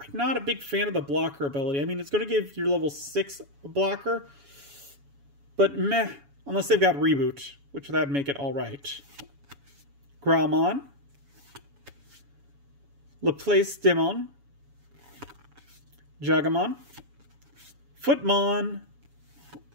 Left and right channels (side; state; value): left; late; 7.1 ms